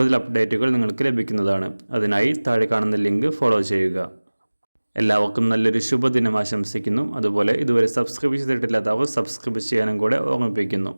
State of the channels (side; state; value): both; inverted; correlation -1.00